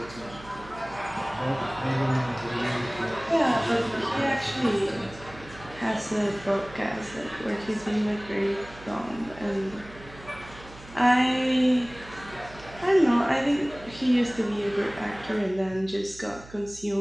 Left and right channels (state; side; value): noise; right; hum, 19 dB below the sound